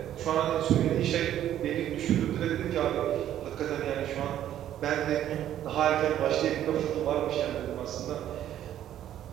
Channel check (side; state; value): left; quieter; 11.5 dB